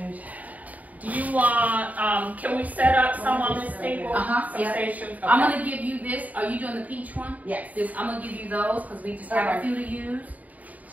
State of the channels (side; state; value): left; late; 0.074 ms